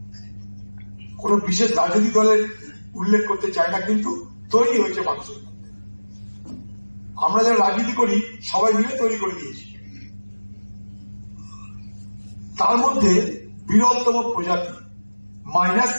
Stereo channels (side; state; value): both; inverted; correlation -1.00